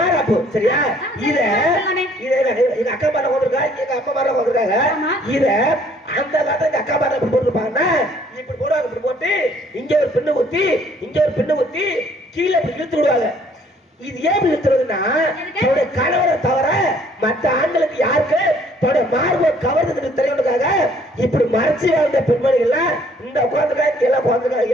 சரியா இத ஆமாமே. இத எங்க அக்கா மார கொண்டிருக்கா எங்க அப்பா மார கொண்டிருக்காங்க ஆமா. இத அந்த காலத்துல எங்க அக்கா மார இப்படி போட்டுருப்பாங்கன்னா இப்படி போடுவாங்க இப்படி போட்டு இங்க ஒரு பின்னு குத்தி இங்க ஒரு பின்னு குத்தி கீழே இப்படி இழுத்து விடுவாங்க இது ஏன் இப்படி இழுத்துறதுன்னா தன்னுடைய கணவரை தவிர மற்ற ஆண்களுக்கு யாருக்கு தன்னுடைய மார்பை கவர்ந்ததுக்கு தெரியணுக்காக இப்படி மறைச்சு வாழ்ந்த பெண்மணிகள்லாம் இந்த உட்காந்துருக்கா இங்க எல்லாம்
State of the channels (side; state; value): both; normal; correlation 0.60